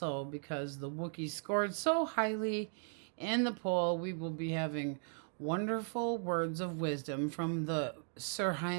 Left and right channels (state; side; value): silent; left; 53 dB below the other